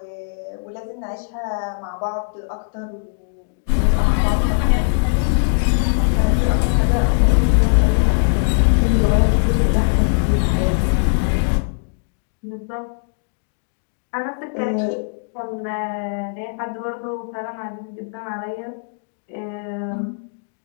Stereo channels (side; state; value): right; silent; digital silence